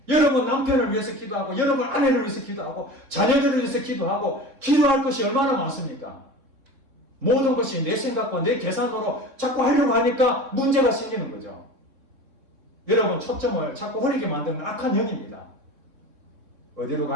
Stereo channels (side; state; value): left; late; 3.6 ms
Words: 여러분 남편을 위해서 기도하고, 여러분 아내를 위해서 기도하고, 자녀들을 위해서 기도하고, 기도할 것이 얼마나 많습니까? 모든 것이 내 생각과 내 계산으로 자꾸 하려고 하니까 문제가 생기는 거죠. 여러분 초점을 자꾸 흐리게 만드는 악한 영입니다. 어디로